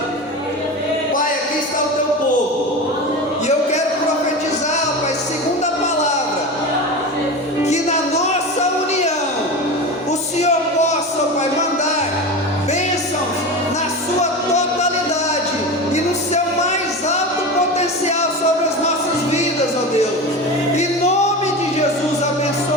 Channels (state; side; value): normal; both; correlation 0.26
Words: Pai, aqui está o teu povo, e eu quero profetizar, Pai, segundo a palavra, que na nossa união o Senhor possa, Pai, mandar bênçãos na sua totalidade e no seu mais alto potencial sobre as nossas vidas, ó Deus. Em nome de Jesus,